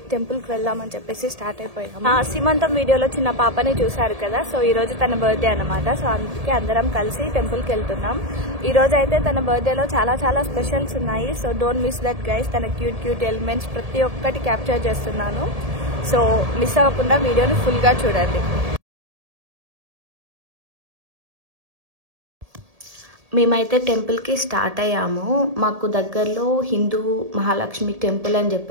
టెంపుల్కి వెళ్దామని చెప్పేసి స్టార్ట్ అయిపోయాము. సీమంతం వీడియోలో చిన్న పాపని చూశారు కదా, సో ఈరోజు తన బర్త్డే అనమాట. సో అందుకే అందరం కలిసి టెంపుల్కి వెళ్తున్నాం. ఈరోజు అయితే తన బర్త్డేలో చాలా స్పెషల్స్ ఉన్నాయి. So don't miss that guys. తన క్యూట్ ఎలిమెంట్స్ ప్రతి ఒక్కటి క్యాప్చర్ చేస్తున్నాను. సో మిస్ అవ్వకుండా వీడియోని ఫుల్గా చూడండి. మేమైతే టెంపుల్కి స్టార్ట్ అయ్యాము. మాకు దగ్గరలో హిందూ మహాలక్ష్మి టెంపుల్ అని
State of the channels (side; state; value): left; late; 1.7 ms